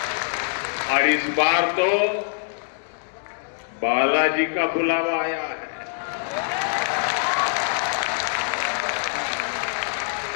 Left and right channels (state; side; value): silent; right; digital silence